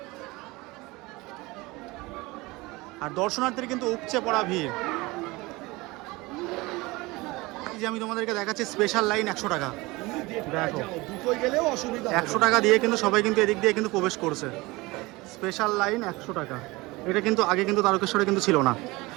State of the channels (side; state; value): left; quieter; 22.3 dB